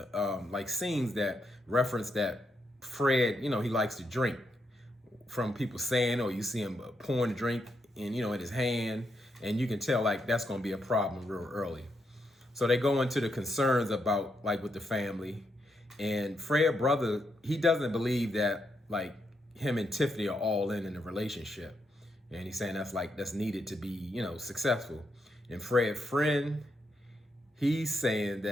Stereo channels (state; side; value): normal; both; correlation 0.80